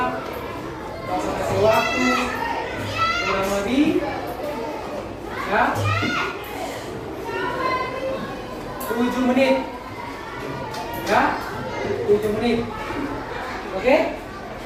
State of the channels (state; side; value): identical; both; correlation 1.00